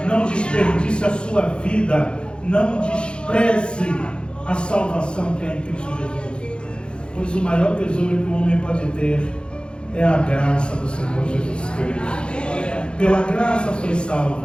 Não desperdice a sua vida. Não despreze a salvação que é em Cristo Jesus. Pois o maior tesouro que o homem pode ter é a graça do Senhor Jesus Cristo. Pela graça sois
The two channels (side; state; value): right; late; 0.054 ms